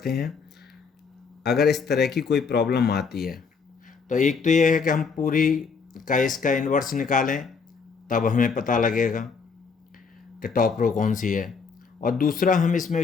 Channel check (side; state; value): right; quieter; 5.4 dB